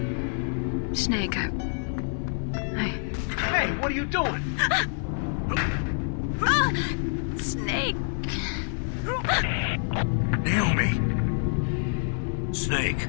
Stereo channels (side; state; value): right; silent; 60 dB below the other